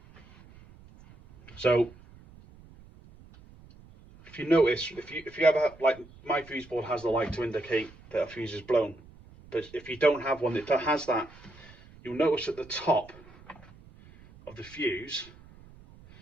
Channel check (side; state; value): right; noise; rumble, 23 dB below the sound